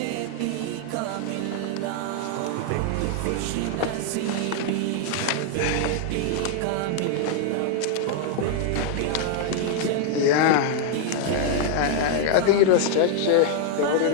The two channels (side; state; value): both; different; correlation 0.00